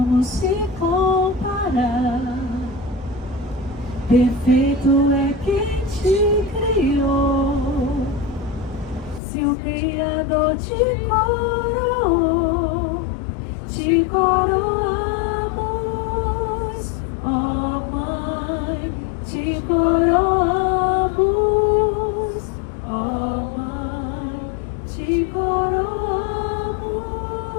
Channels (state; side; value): drops out; right; at 9.2 s